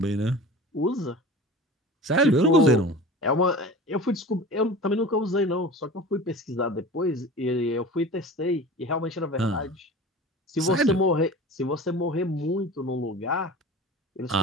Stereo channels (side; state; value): both; normal; correlation 0.36